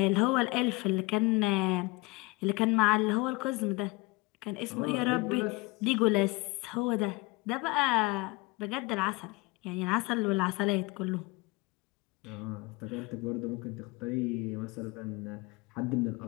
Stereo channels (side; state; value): right; quieter; 24.2 dB